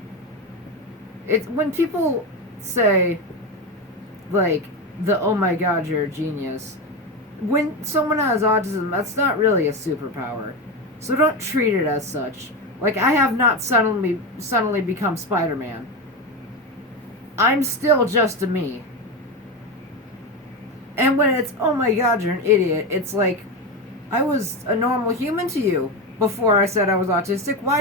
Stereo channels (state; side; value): normal; both; correlation 0.16